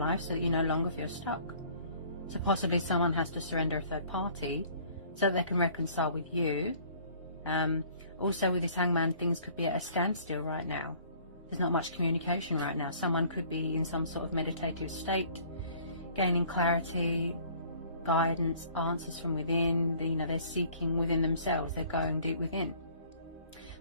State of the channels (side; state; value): both; inverted; correlation -0.54